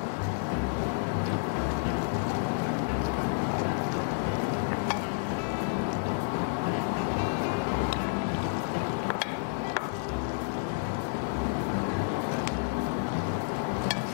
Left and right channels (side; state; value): right; silent; digital silence